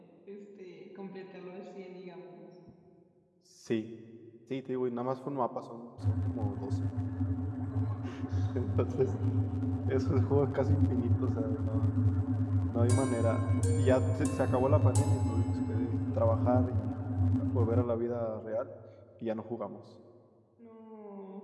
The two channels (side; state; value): both; identical; correlation 1.00